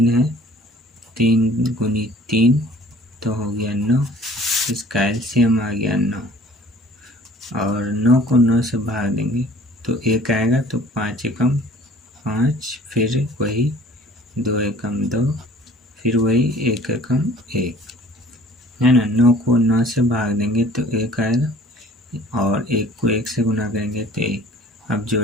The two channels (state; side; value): normal; both; correlation 0.50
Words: है, 3 गुनी 3, तो हो गया 9, इसका एलसीएम आ गया 9, और 9 को 9 से भाग देंगे तो 1 आएगा, तो 5 एकम 5, फिर वही 2 एकम 2, फिर वही 1 एकम 1, है ना। 9 को 9 से भाग देंगे तो 1 आएगा, और 1 को 1 से गुना करेंगे तो 1, अब